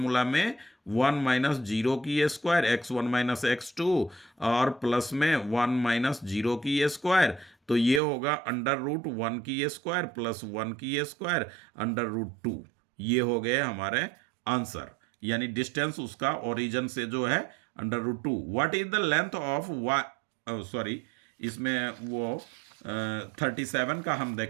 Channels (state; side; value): drops out; left; at 8.0 s